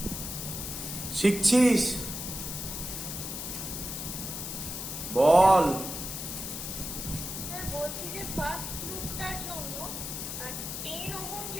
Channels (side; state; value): left; noise; hiss, 6 dB below the sound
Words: শিখছিস? বল। স্যার বলছি যে ফার্স্ট লুপটার জন্য 10 ওহম